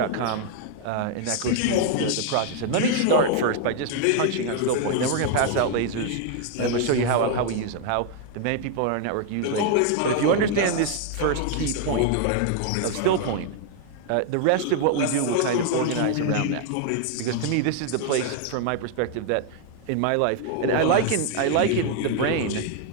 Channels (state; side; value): different; both; correlation 0.00